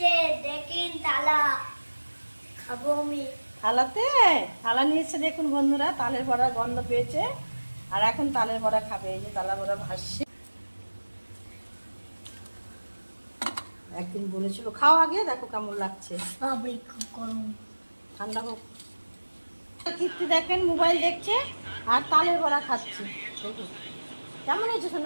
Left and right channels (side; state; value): both; inverted; correlation -1.00